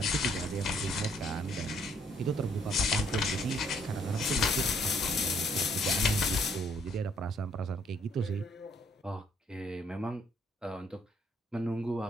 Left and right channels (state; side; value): normal; both; correlation 0.66